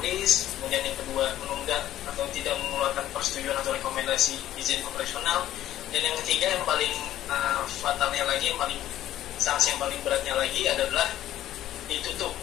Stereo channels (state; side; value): quieter; right; 12.9 dB